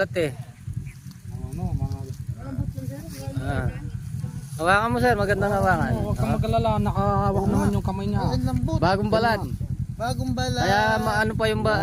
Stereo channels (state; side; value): identical; both; correlation 1.00